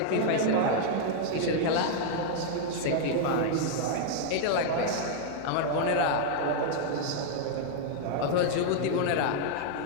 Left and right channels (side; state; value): both; different; correlation -0.01